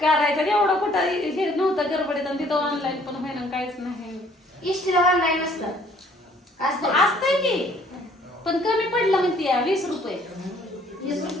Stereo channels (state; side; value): normal; both; correlation 0.60